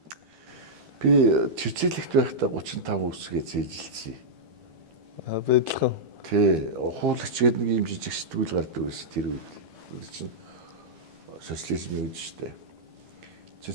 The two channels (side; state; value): left; late; 12 ms